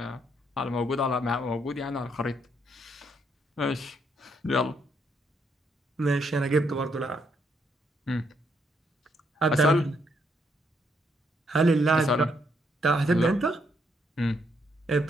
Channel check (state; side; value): normal; both; correlation 0.74